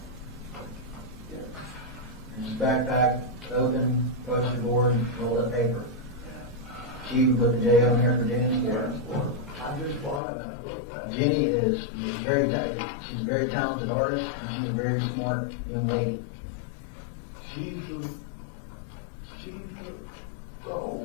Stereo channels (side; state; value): right; drops out; at 10.2 s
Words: His backpack open, poster board, and rolled up paper. She even put the J on here for Jenny's for. I just bought it and I looked at it. Jenny is very talented. She's a very talented artist, and she's a very smart young lady. She's the